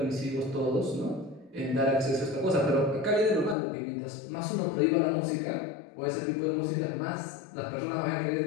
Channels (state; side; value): drops out; right; at 3.6 s